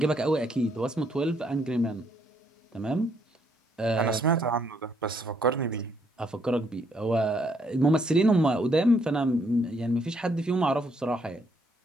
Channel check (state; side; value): normal; both; correlation 0.71